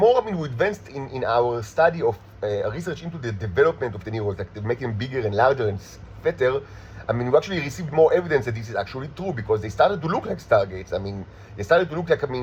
I mean we advanced in our study of research into the development of the Neros, like making them bigger and larger and fatter, I mean, we actually received more evidence that this is actually true because they started to look like stargates. I mean, they started to look like, I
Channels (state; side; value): identical; both; correlation 1.00